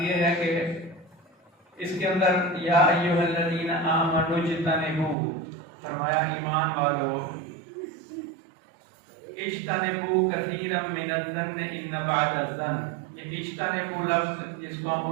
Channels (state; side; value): drops out; left; at 5.2 s